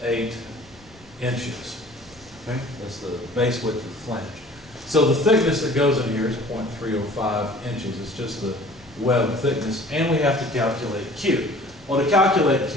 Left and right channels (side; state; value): left; noise; rumble, 25 dB below the sound